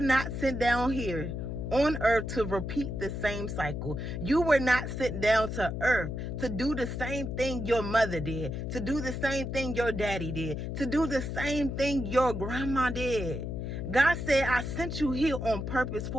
not sent down here on earth to repeat the same cycle. You were not sent down to earth to do the same thing your mother did, to do the same thing your daddy did, to do the same thing your grandma did. God said, I sent you here on purpose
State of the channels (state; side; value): noise; left; hum, 4 dB below the sound